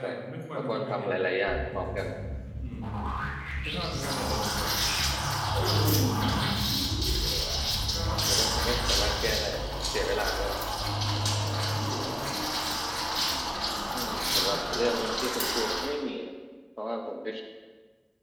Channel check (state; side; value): identical; both; correlation 1.00